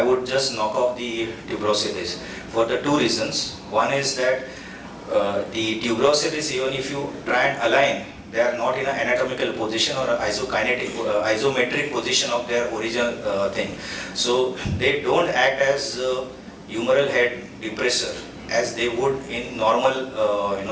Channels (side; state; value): both; identical; correlation 1.00